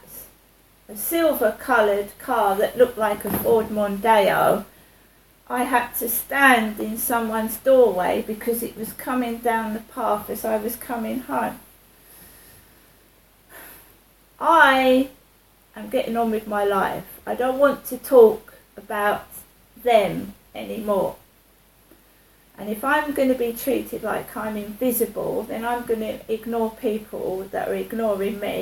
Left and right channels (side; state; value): both; identical; correlation 1.00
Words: A silver coloured car that looked like a Ford Mondeo. I had to stand in someone's doorway because it was coming down the path as I was coming home. I am getting on with my life. I don't want to talk about them anymore. And if I'm going to be treated like I'm invisible, then I'm going to ignore people that are ignoring